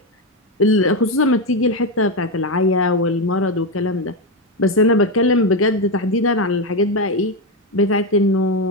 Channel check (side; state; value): both; normal; correlation 0.09